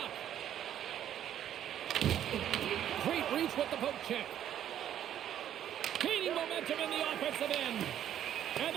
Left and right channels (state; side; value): quieter; left; 10.7 dB